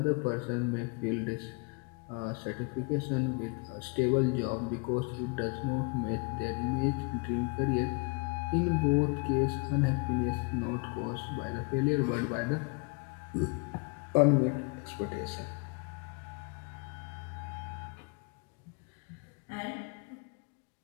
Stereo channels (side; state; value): right; quieter; 33.1 dB